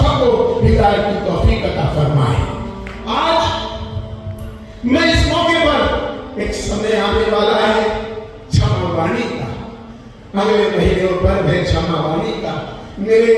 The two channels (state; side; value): identical; both; correlation 1.00